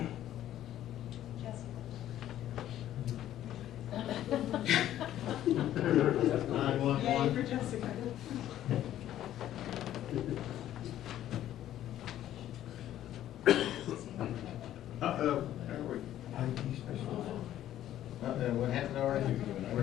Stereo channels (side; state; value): right; quieter; 12.3 dB